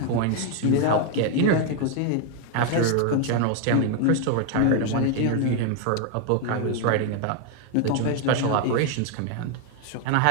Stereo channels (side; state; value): both; different; correlation 0.00